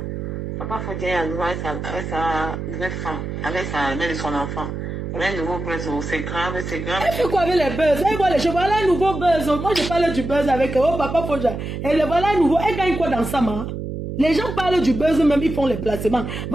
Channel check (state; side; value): noise; right; hum, 6 dB below the sound